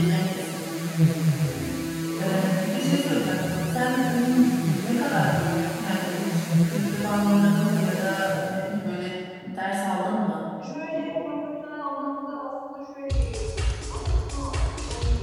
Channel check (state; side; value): identical; both; correlation 1.00